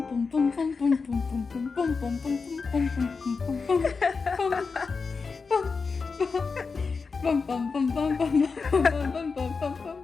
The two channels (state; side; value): quieter; right; 4.8 dB